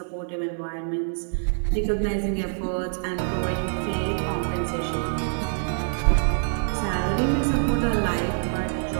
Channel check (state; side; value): silent; left; 61 dB below the other